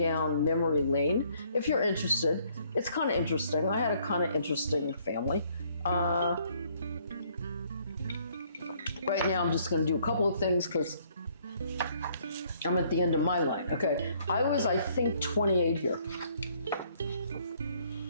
memory lane if you're interested. It's kind of interesting. I had a kind of interesting family. Right now, I'm just going to do a couple of things because I'm at the end of my line. Okay, I was, I think, 28 here.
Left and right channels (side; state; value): both; inverted; correlation -0.65